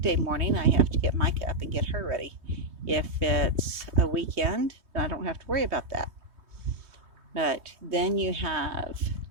morning, I have to get Micah up and get her ready. If it's a weekend, then I don't have to worry about that. But then you have,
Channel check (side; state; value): left; late; 3.2 ms